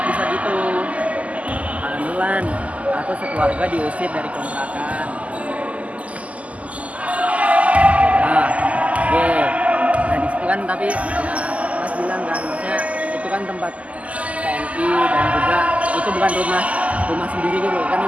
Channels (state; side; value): late; left; 0.069 ms